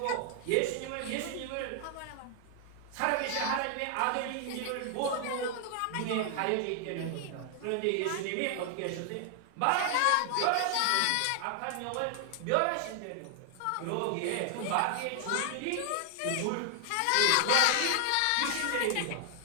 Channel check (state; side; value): different; both; correlation 0.00